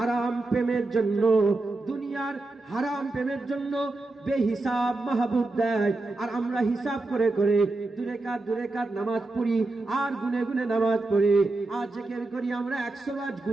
প্রেমের জন্য বেহিসাব মাহবুব দেয়, আর আমরা হিসাব করে দূরে কাত নামাজ পড়ি, আর গুনে নামাজ পড়ি, আর জিকির করি আমরা 100 বার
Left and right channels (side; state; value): left; quieter; 3.1 dB